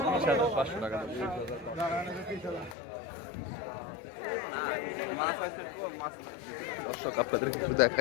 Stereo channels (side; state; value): right; drops out; at 2.8 s